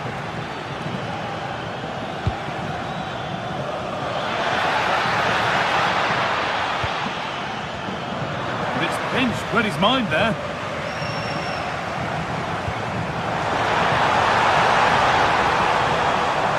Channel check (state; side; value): identical; both; correlation 1.00